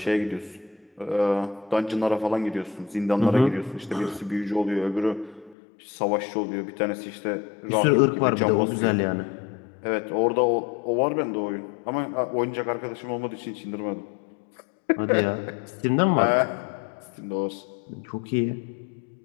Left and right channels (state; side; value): drops out; right; at 5.6 s